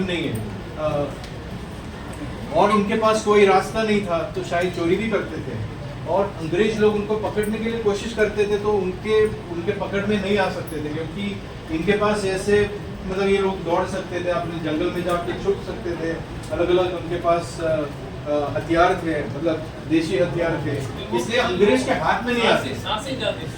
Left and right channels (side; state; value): both; identical; correlation 1.00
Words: नहीं है, और उनके पास कोई रास्ता नहीं था तो शायद चोरी भी करते थे, और अंग्रेज लोग उनको पकड़ने के लिए कोशिश करते थे तो उनके पकड़ में नहीं आ सकते थे, क्योंकि इनके पास ऐसे मतलब ये लोग दौड़ सकते थे, अपने जंगल में जाके छुप सकते थे, अलग अलग उनके पास हथियार थे, मतलब देशी हथियार थे, इसलिए अंग्रेज के हाथ में नहीं आते। सांसी जाती,